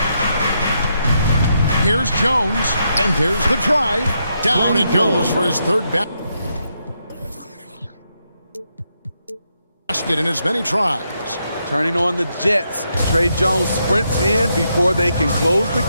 Here's Jones, and there's the drive. Down it goes for his third basket in as many tries. Turning on the Jets. Trey Jones sprints in before they can close the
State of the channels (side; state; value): both; inverted; correlation -0.80